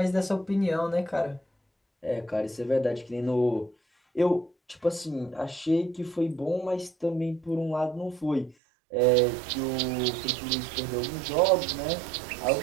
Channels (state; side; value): drops out; left; at 8.6 s